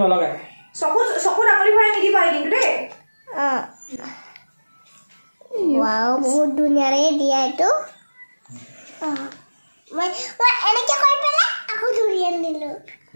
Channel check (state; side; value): inverted; both; correlation -1.00